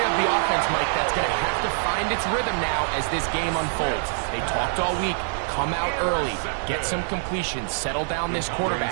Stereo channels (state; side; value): silent; left; 62 dB below the other